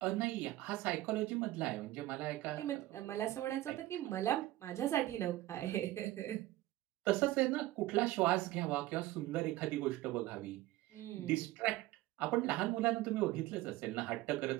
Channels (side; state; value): left; quieter; 16.6 dB